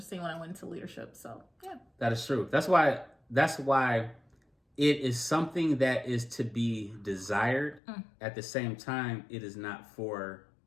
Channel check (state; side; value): drops out; right; at 7.8 s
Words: when I went into leadership. So, yeah. That is true. That's why it is something that is to be desired. At the same time, it is not for